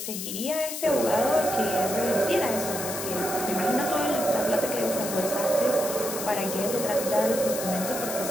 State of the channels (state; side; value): noise; left; hiss, 6 dB below the sound